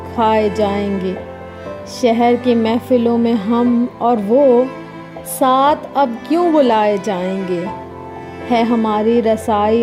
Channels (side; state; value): both; identical; correlation 1.00